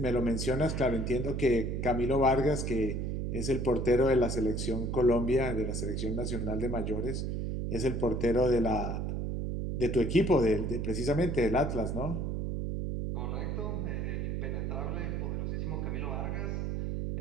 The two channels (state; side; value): noise; right; hum, 1 dB below the sound